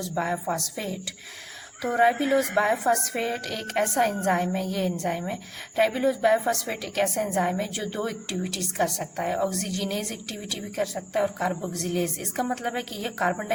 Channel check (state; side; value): identical; both; correlation 1.00